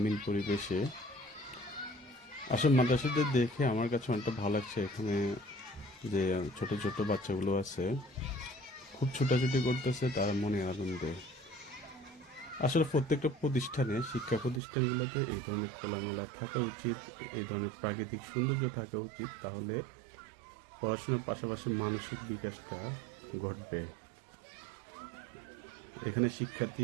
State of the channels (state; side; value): drops out; left; at 14.6 s